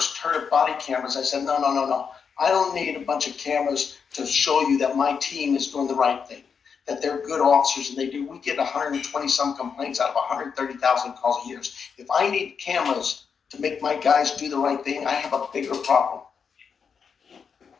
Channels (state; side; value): quieter; right; 6.3 dB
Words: heard of body cameras, I said, no. I don't need a bunch of cameras to show you that my team is doing the right thing, that they're good officers, and we get 120 some complaints out of 130,000 calls a year. If I need cameras to make my guys do the right thing, I have a bigger problem.